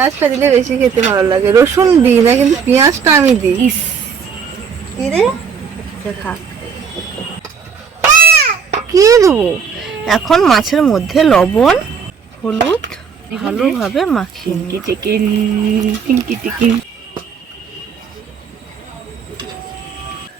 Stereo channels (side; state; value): left; quieter; 6.5 dB